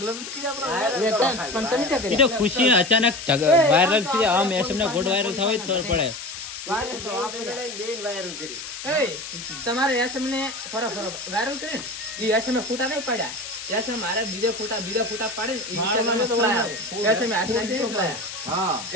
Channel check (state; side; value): noise; left; hiss, 9 dB below the sound